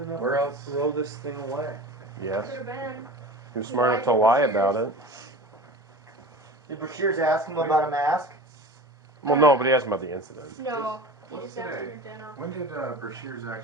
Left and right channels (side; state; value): both; normal; correlation 0.35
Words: enough Where else? to throw this thing away? Yes. Could have been. He was smart enough to lie about it. Did Bashir's ask him about a mask? Well, no, but he asked about the incident. No, he What's just asked today? for dinner. When did Brashears